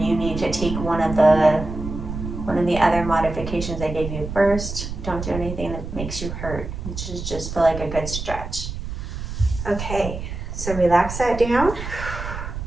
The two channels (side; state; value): right; noise; rumble, 7 dB below the sound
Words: you need to take one of the other modifications I gave you first. Don't do anything that makes you hurt. It should just feel like a good stretch. Okay, so relax that down.